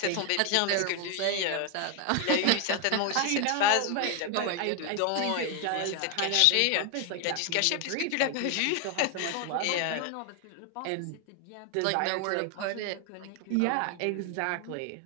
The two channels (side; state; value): both; different; correlation 0.01